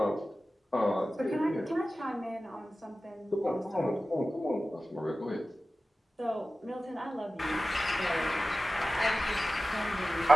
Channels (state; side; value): normal; both; correlation 0.95